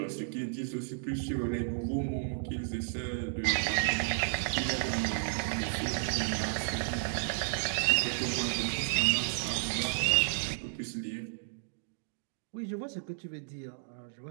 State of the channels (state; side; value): silent; left; digital silence